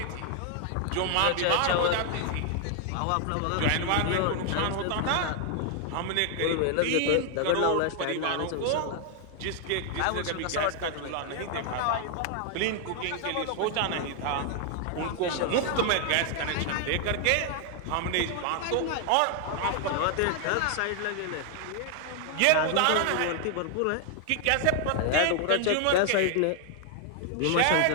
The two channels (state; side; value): different; both; correlation 0.00